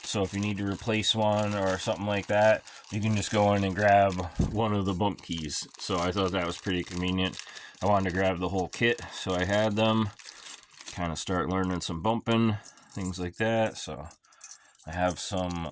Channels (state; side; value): identical; both; correlation 1.00